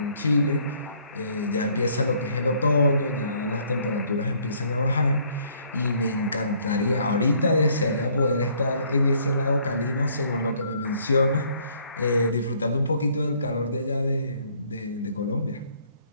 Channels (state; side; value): inverted; both; correlation -0.63